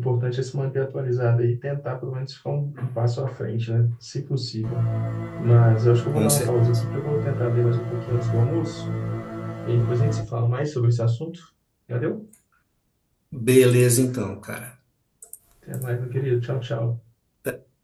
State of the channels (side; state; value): both; identical; correlation 1.00